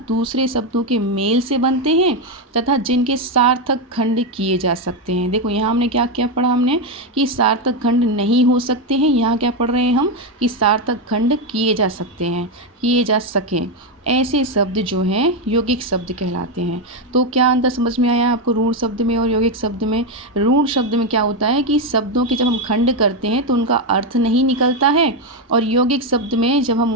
दूसरे शब्दों के मेल से बनते हैं तथा जिनके सार्थक खंड किए जा सकते हैं। देखो यहाँ हमने क्या क्या पढ़ा, हमने कि सार्थक खंड नहीं हो सकते हैं, यहाँ क्या पढ़ रहे हैं हम कि सार्थक खंड किए जा सकते हैं, किए जा सकें, ऐसे शब्द जो हैं यौगिक शब्द कहलाते हैं। तो क्या अंतर समझ में आया आपको रूढ़ शब्द में और यौगिक शब्द में? रूढ़ शब्द में क्या होता है कि शब्दों के जब हम खंड करते हैं तो उनका अर्थ नहीं निकलता है, और यौगिक शब्द में जब हम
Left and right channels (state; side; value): normal; both; correlation 0.07